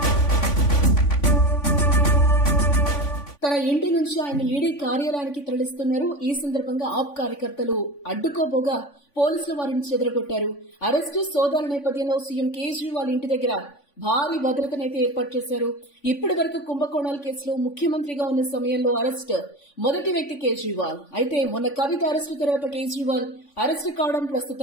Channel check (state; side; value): late; right; 3.5 ms